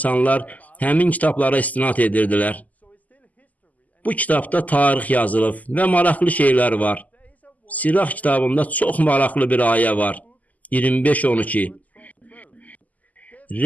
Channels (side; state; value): right; late; 0.077 ms